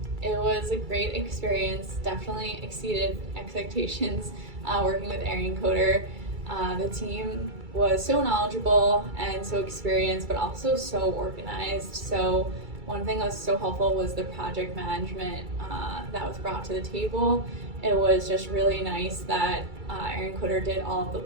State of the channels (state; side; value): late; left; 2.3 ms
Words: It was a great experience, definitely exceeded expectations working with Arionkoder. The team was so knowledgeable and so experienced, but also so organized. So one thing that was so helpful was the project management that was brought to the table. It was just really nice that Arionkoder did all of the